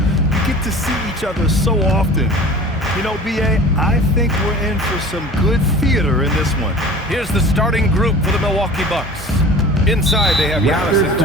get to see each other so often. You know, B.A., I think we're in for some good theater in this one. Here's the starting group for the Milwaukee Bucks. Inside, they have Giannis and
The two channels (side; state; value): both; normal; correlation 0.41